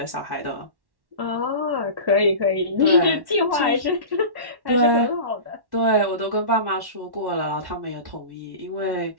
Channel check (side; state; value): left; late; 1.1 ms